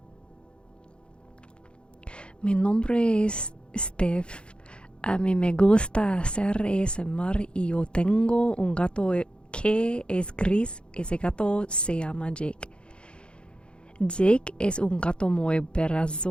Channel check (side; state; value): right; late; 0.055 ms